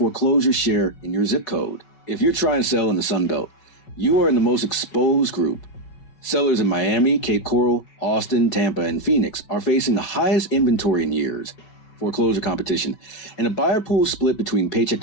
share in your zip code. If you're trying to sell in the Sun Belt, you are in the most exposed group. Sellers in Miami, Cape Coral, Austin, Tampa, and Phoenix are facing the highest inventory in years, foreclosure competition, and a buyer pool split between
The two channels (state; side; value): late; right; 5.3 ms